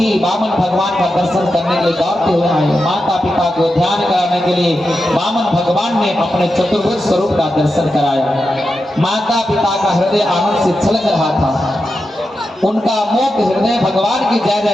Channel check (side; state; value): both; normal; correlation 0.89